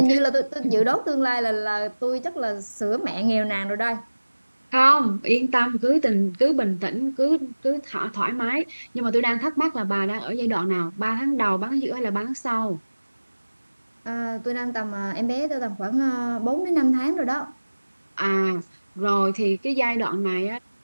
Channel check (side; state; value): both; inverted; correlation -1.00